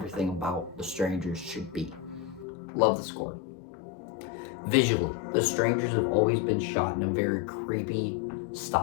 about the Strangers should be. Love the score. Visually, the Strangers have always been shot in a very creepy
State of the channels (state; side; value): drops out; right; at 2.5 s